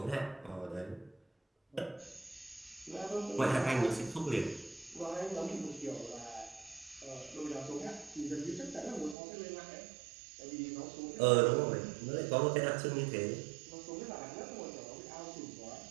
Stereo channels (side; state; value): left; drops out; at 9.2 s